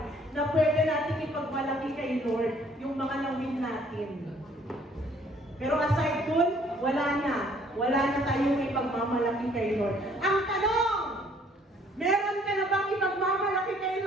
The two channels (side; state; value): both; normal; correlation 0.60